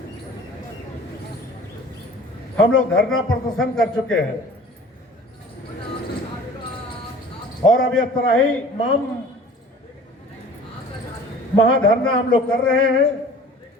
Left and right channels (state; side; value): normal; both; correlation 0.46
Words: हम लोग धरना प्रदर्शन कर चुके हैं और अब यह त्राहिमाम महाधरना हम लोग कर रहे हैं।